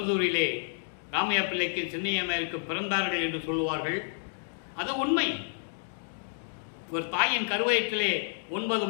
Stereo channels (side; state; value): right; silent; digital silence